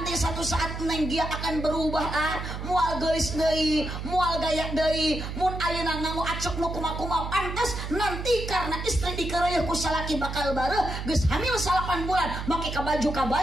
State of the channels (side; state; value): right; noise; hum, 6 dB below the sound